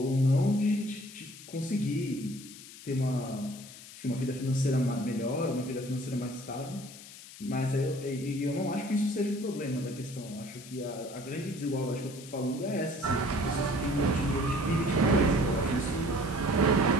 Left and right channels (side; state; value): left; noise; hiss, 16 dB below the sound